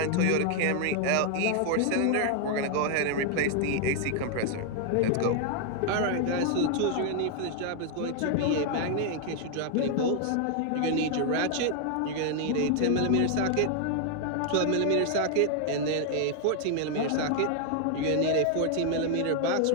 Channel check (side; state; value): both; different; correlation 0.00